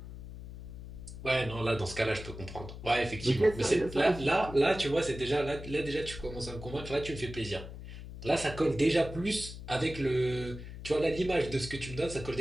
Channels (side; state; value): left; noise; hum, 11 dB below the sound